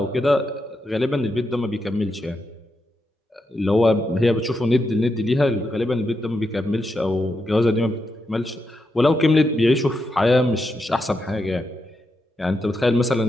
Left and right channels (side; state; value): both; normal; correlation 0.84